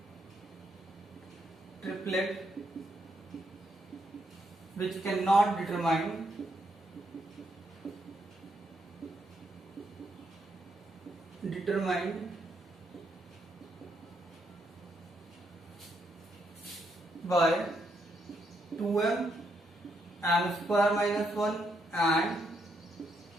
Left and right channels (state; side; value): normal; both; correlation 0.77